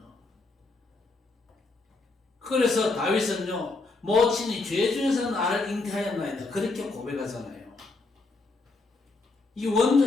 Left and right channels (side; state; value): right; quieter; 3.6 dB